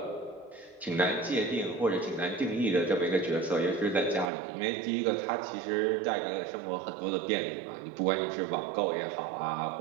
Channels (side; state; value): left; drops out; at 4.2 s